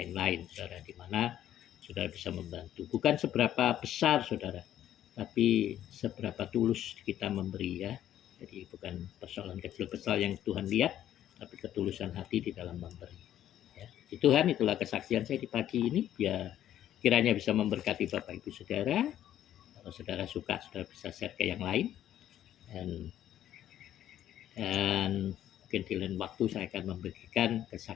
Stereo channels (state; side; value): quieter; right; 11.6 dB